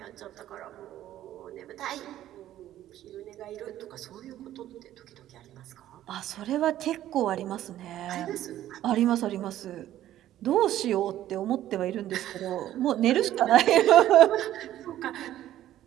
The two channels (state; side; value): quieter; left; 12.9 dB